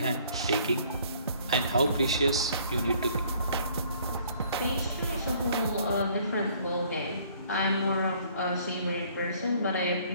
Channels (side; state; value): both; inverted; correlation -0.59